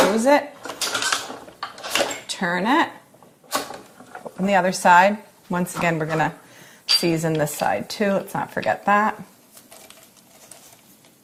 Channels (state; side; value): identical; both; correlation 1.00